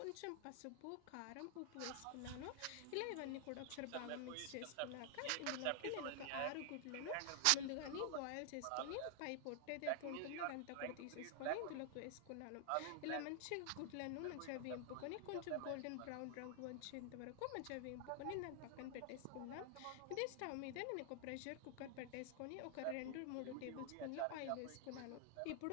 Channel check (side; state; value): both; different; correlation 0.00